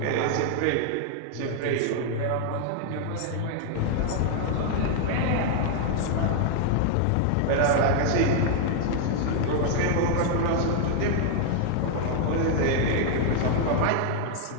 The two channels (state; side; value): different; both; correlation 0.00